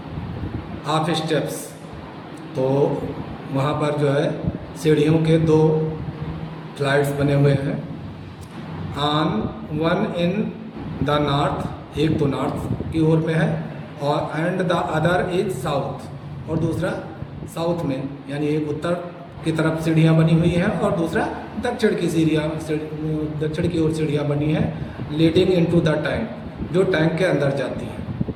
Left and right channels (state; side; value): identical; both; correlation 1.00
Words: of steps. तो वहाँ पर जो है सीढ़ियों के 2 फ्लाइट्स बने हुए हैं। On one in the north, एक तो नॉर्थ की ओर में है, और and the other is south, और दूसरा साउथ में, यानी एक उत्तर की तरफ सीढ़ियाँ बनी हुई हैं और दूसरा दक्षिण की ओर सीढ़ियाँ बनी हैं, लीडिंग इनटू द टैंक, जो टैंक के अंदर जाती हैं।